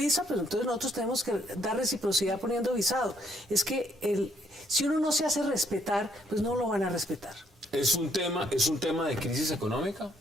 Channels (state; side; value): normal; both; correlation 0.69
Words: pero entonces nosotros tenemos que dar reciprocidad poniendo visado. Es que si uno no se hace respetar, pues no lo van a respetar. ¿Es un tema de crisis económica,